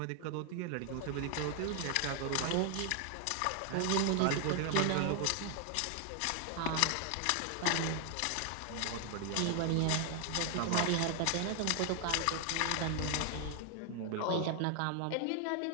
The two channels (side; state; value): both; different; correlation 0.00